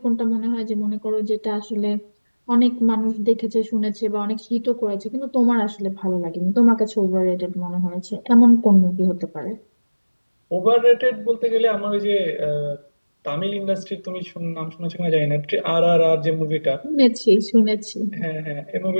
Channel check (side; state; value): both; inverted; correlation -1.00